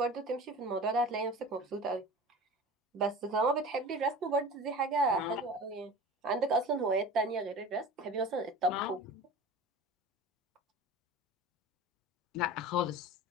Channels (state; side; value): normal; both; correlation 0.36